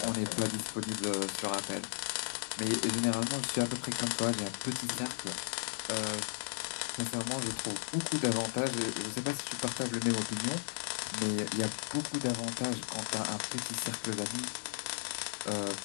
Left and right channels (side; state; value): right; silent; digital silence